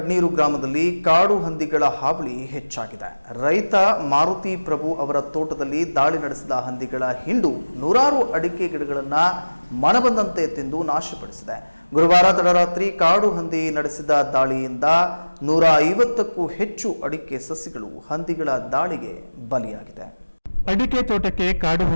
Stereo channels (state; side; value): inverted; both; correlation -1.00